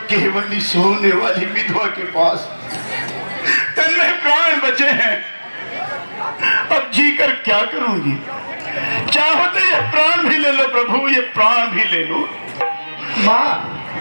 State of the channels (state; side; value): inverted; both; correlation -1.00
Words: केवल ही सोने वाली विधवा के पास तन्मय प्राण बचे हैं। अब जीकर क्या करूंगी? चाहो तो ये प्राण भी ले लो प्रभु, ये प्राण भी ले लो। मां,